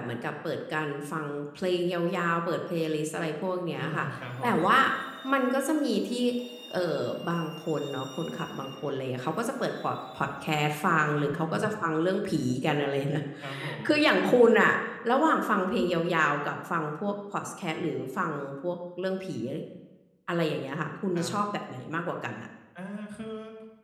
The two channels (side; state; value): both; identical; correlation 1.00